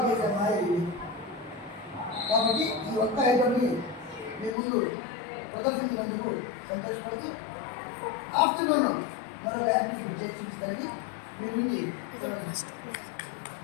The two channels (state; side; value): drops out; right; at 4.5 s